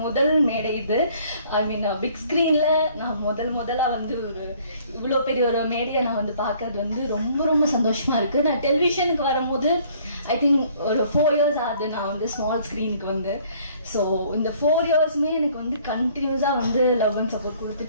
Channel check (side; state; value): both; inverted; correlation -0.58